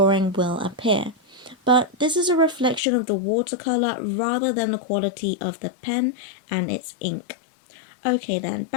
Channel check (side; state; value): right; drops out; at 2.8 s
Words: will appear. But this is a reflection of the watercolor rather than the quality of the pen and its ink. Okay then,